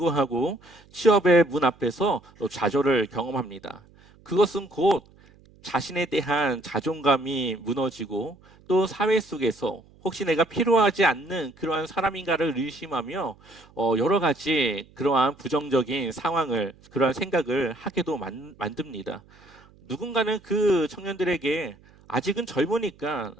취업의 문 앞에서 좌절을 경험합니다. 그것은 곧 자신에 대한 자존감이 무너지고 또 사회 속에서 혹시 내가 필요하지 않는 그러한 사람인가를 의심하며 여러 가지 그러한 부정적인 상황을 그러한 생각을 하게도 만듭니다. 누군가는 그 청년들에게 아직은 젊으니까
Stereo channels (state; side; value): noise; right; hum, 27 dB below the sound